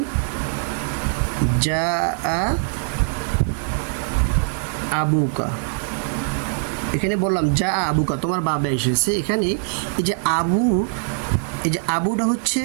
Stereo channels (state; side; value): silent; left; 62 dB below the other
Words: আবুকা। এখানে বললাম আবুকা, তোমার বাবা এসেছে। এখানে এই যে আবুটা হচ্ছে